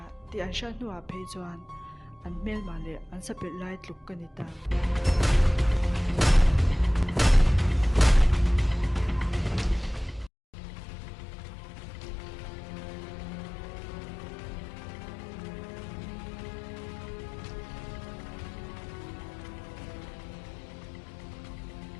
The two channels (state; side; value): drops out; right; at 10.3 s